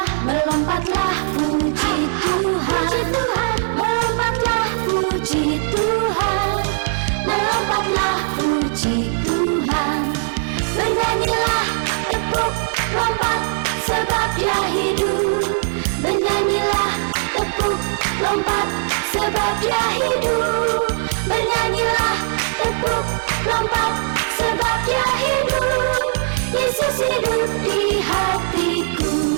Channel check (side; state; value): left; silent; digital silence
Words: melompatlah puji Tuhan, melompatlah puji Tuhan, melompatlah puji Tuhan. Bernyanyilah tepuk lompat sebab Dia hidup, bernyanyilah tepuk lompat sebab Dia hidup, bernyanyilah tepuk lompat sebab Dia hidup. Yesus hidup di